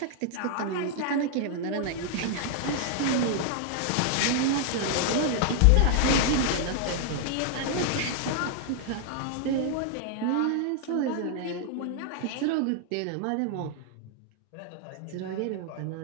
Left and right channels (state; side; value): different; both; correlation 0.00